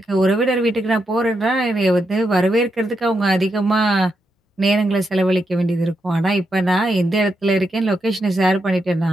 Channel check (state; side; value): normal; both; correlation 0.83